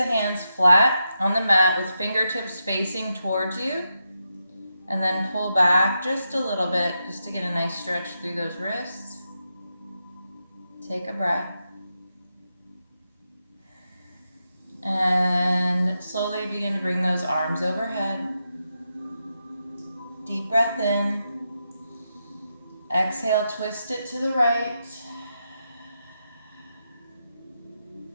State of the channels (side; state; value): both; inverted; correlation -0.86